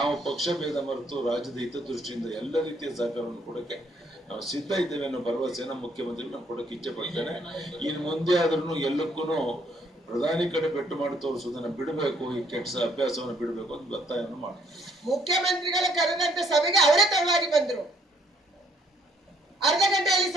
ಪಕ್ಷ ಭೇದ ಮರೆತು ರಾಜ್ಯದ ಹಿತದೃಷ್ಟಿಯಿಂದ ಎಲ್ಲ ರೀತಿಯ ಸಹಕಾರವನ್ನು ಕೊಡಕ್ಕೆ ನಾವು ಸಿದ್ಧ ಇದ್ದೇವೆ ಅನ್ನೋ ಭರವಸೆಯನ್ನು ಮುಖ್ಯಮಂತ್ರಿಗಳು ನಾವು ಕೊಡಕ್ಕೆ ಇಚ್ಛೆ ಪಡ್ತೇನೆ. ಇನ್ನು ಮುಂದೆ ಆದ್ರೂ ಎಲ್ಲಕ್ಕೂ ಪ್ರಧಾನಿ ಕಡೆ ಬೆಟ್ಟು ಮಾಡಿ ತೋರಿಸುವುದನ್ನ ಬಿಡಬೇಕು, ಈ ಕೆಟ್ಟ ಅಭ್ಯಾಸವನ್ನು ಬಿಡಬೇಕು ಅಂತ ಒತ್ತಾಯವನ್ನು ಮಾಡ್ತಾರೆ. ಮುಖ್ಯಮಂತ್ರಿಗಳ ಕರೆದಂತ ಸಭೆಗೆ ಅವರೇ ತಡವಾಗಿ ಬಂದ್ರು. ಅರ್ಧ ಗಂಟೆಯಲ್ಲಿ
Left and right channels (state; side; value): normal; both; correlation 0.67